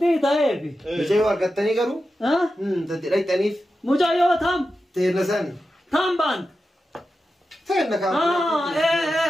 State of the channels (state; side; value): normal; both; correlation 0.91